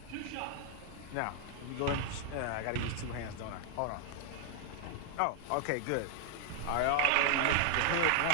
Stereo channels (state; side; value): different; both; correlation 0.00